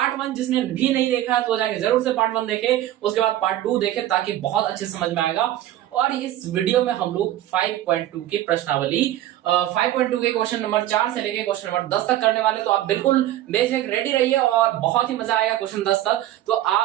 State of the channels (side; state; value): left; quieter; 13.5 dB